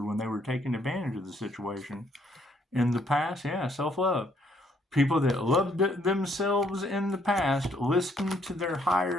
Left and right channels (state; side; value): normal; both; correlation 0.68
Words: when they were taking advantage of the situation in the past. Yeah, self-love. People that loved themselves in the past, listen to their